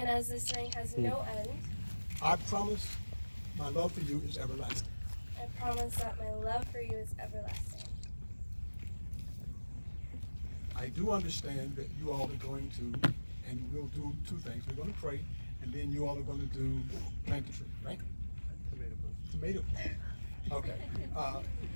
as this ring has no end, I promise my love for you is everlasting. I promise that my love for you is everlasting. I do understand that you all are going to, and we'll do two things. We're going to pray, and then you all are going to do plant the tree, right? Tomato plant. Okay.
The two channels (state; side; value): inverted; both; correlation -1.00